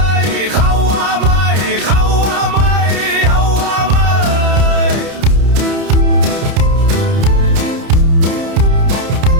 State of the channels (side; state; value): left; late; 30 ms